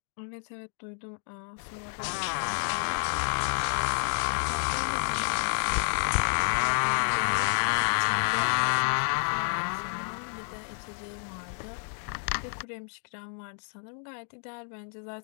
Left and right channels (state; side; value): silent; right; 58 dB below the other